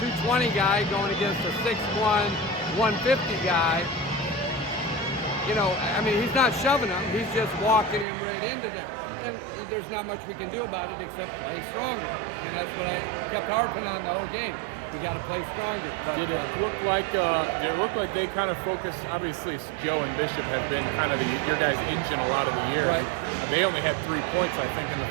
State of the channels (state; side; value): drops out; left; at 8.1 s